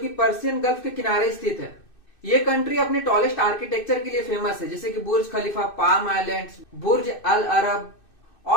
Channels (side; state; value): right; late; 2.6 ms